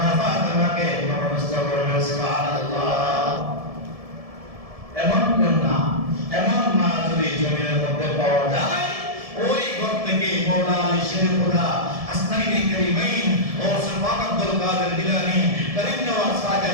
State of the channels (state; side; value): late; left; 1.7 ms